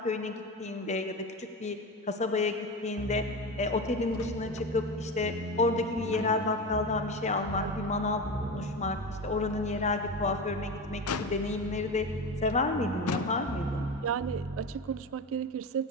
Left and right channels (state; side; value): normal; both; correlation 0.24